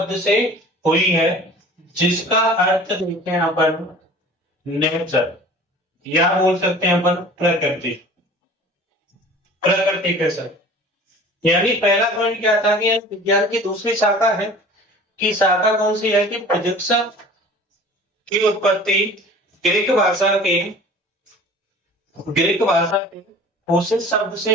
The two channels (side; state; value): both; normal; correlation 0.43